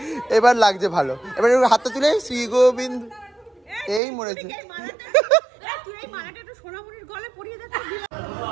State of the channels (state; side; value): drops out; left; at 4.0 s